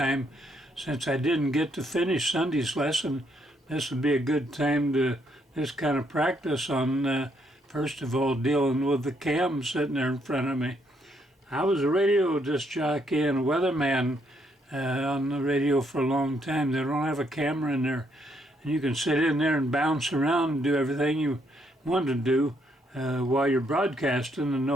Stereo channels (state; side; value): normal; both; correlation 0.73